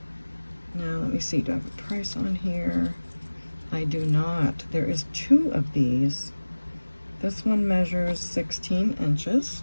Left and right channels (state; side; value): inverted; both; correlation -1.00